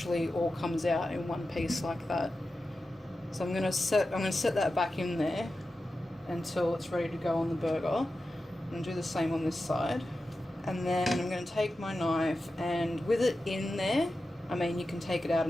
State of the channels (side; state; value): both; normal; correlation 0.92